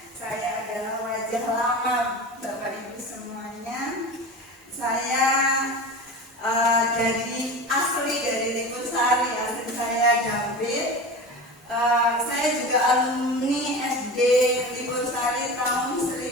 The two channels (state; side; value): normal; both; correlation 0.30